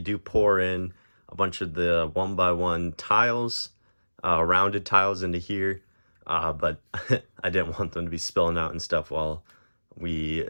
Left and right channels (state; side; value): inverted; both; correlation -1.00